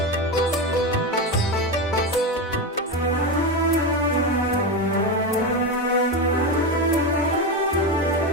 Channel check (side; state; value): both; normal; correlation 0.15